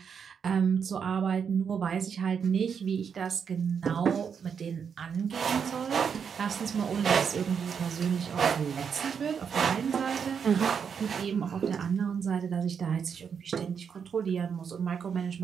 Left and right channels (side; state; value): left; quieter; 6.9 dB